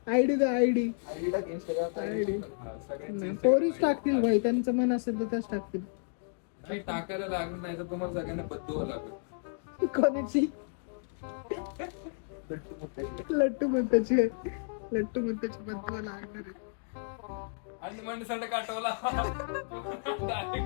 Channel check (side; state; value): right; silent; digital silence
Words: आयडी द्या आयडी. आयडी पोरीच टाकतील भाई, त्यांचं मन असेल तर त्याच टाकतील. नाही टाकायला लागत नाही तर तुम्हाला सगळ्यांना बदलवा लागेल. कोणाची? लट्टू म्हणताची बद्दू लागणार आहे. आणि माणसाने काटवला.